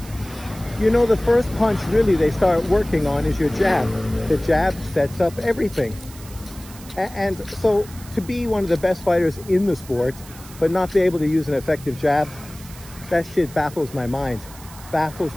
you know the first punch really they start working on is your jab. The jab sets up everything. And so to be one of the best fighters in the sport, but not be able to use an effective jab, that shit baffles my mind. Baffles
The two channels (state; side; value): noise; right; hiss, 19 dB below the sound